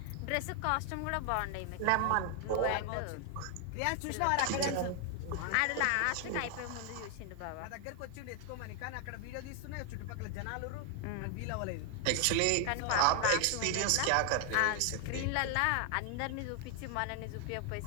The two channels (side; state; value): both; different; correlation 0.00